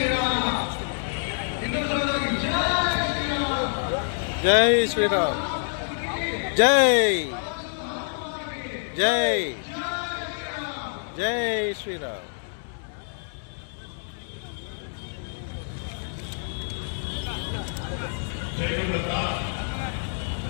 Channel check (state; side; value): silent; right; digital silence